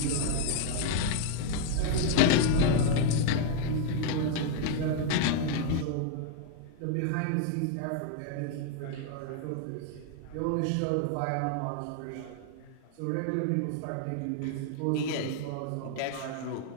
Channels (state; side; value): different; both; correlation 0.00